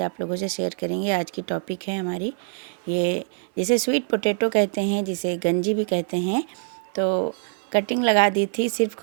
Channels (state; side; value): silent; left; 59 dB below the other